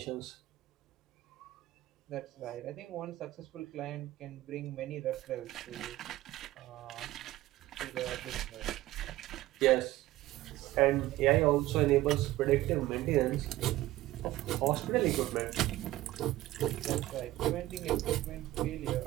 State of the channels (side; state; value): left; quieter; 16.4 dB